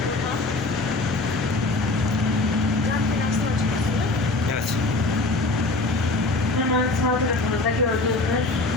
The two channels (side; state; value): right; quieter; 3.2 dB